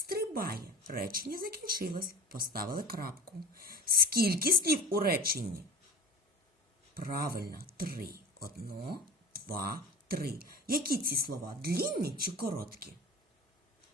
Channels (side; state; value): both; normal; correlation 0.33